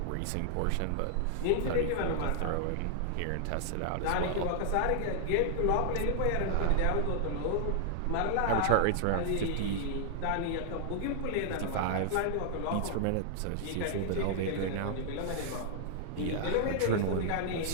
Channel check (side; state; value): both; different; correlation -0.01